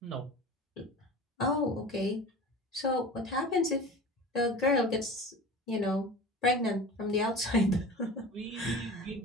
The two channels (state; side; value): normal; both; correlation 0.36